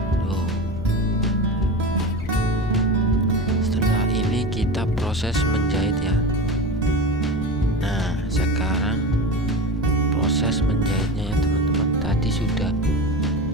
tuh. Setelah ini kita proses menjahit ya. Nah sekarang proses menjahitnya ya teman-teman. Tadi sudah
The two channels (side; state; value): left; noise; rumble, 10 dB below the sound